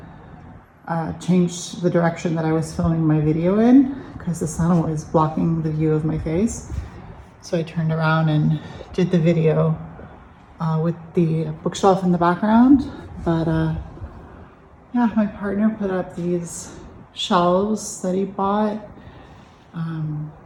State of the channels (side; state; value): both; identical; correlation 1.00